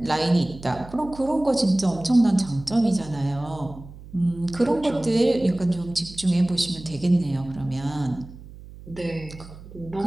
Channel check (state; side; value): noise; right; hum, 17 dB below the sound